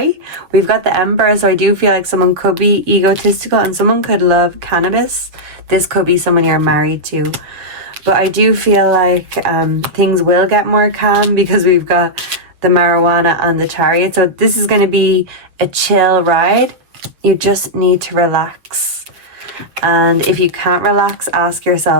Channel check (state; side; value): late; left; 7.2 ms